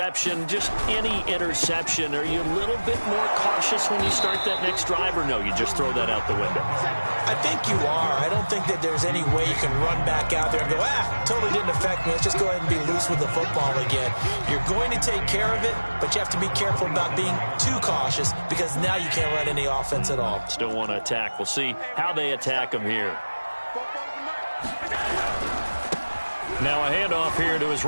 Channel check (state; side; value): inverted; both; correlation -1.00